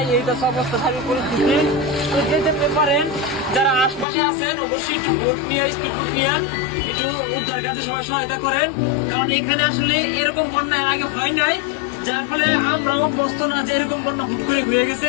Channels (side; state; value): right; drops out; at 4.0 s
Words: এইটা সব অবস্থা স্বাভাবিক পরিস্থিতি। তো যেতে পারেন যারা আশপাশে আছেন অবশ্যই একটু বোট নিয়ে, স্পিড বোট নিয়ে একটু উদ্ধার কাজে সবাই সহায়তা করেন, কারণ এখানে আসলে এরকম বন্যা এর আগে হয় নাই, যার ফলে আমরাও অভ্যস্ত না যে এরকম বন্যা হুট করে হয়ে গেছে।